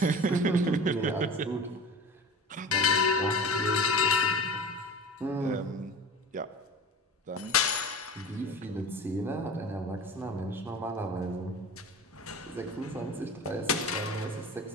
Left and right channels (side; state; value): both; normal; correlation 0.35